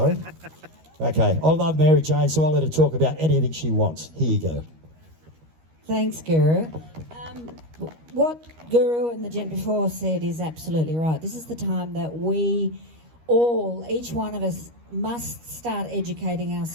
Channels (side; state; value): left; late; 13 ms